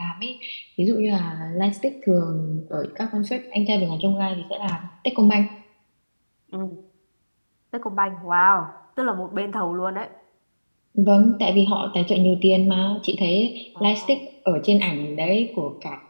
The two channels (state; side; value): inverted; both; correlation -1.00